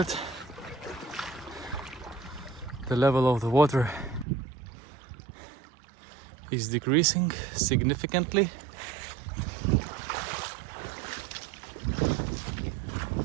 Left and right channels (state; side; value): drops out; left; at 4.2 s